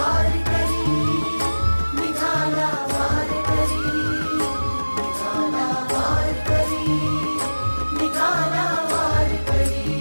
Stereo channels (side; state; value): both; inverted; correlation -1.00